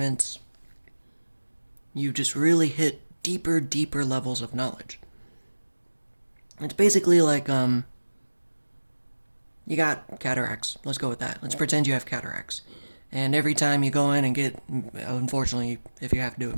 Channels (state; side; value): inverted; both; correlation -1.00